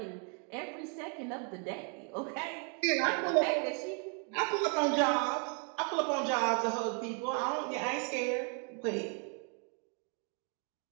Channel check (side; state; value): left; quieter; 39.3 dB